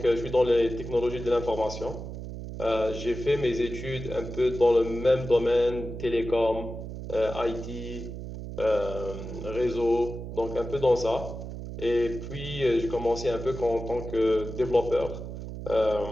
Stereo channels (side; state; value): right; noise; hum, 9 dB below the sound